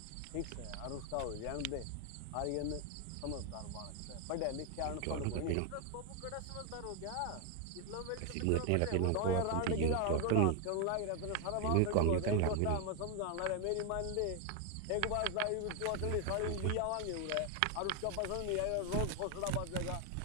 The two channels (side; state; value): both; different; correlation 0.01